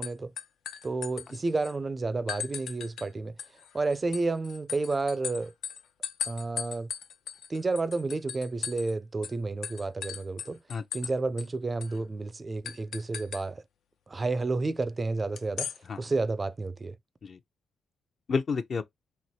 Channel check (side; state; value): both; normal; correlation 0.91